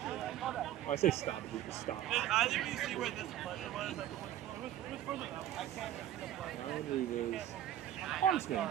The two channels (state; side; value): quieter; left; 12.0 dB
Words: Oh, I say stoppages, but stops. Ryan Reeves. Honest man,